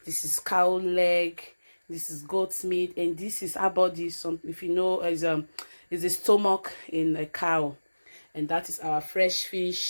This is cow leg. This is goat's meat, and this is our body. Some, if you know, is a stomach in a cow, and that is our fresh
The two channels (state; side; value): inverted; both; correlation -1.00